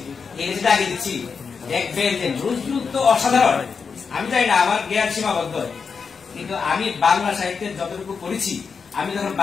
এই লেখাটা আগে দিচ্ছি, দেখবেন যে নজরুল তো অসাধারণ। আমি জানি না, আমার জ্ঞান সীমাবদ্ধ, কিন্তু আমি বাংলা সাহিত্যের যতটুকু পড়েছি, আমি যখন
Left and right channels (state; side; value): quieter; right; 5.6 dB